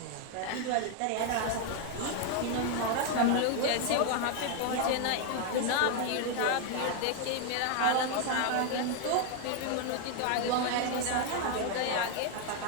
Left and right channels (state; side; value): different; both; correlation 0.00